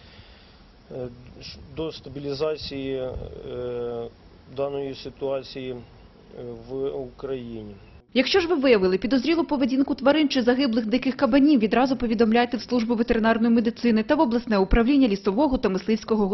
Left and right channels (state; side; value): identical; both; correlation 1.00